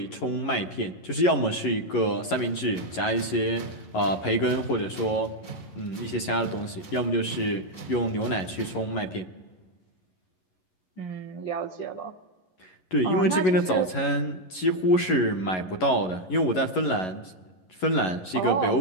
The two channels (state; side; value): late; right; 11 ms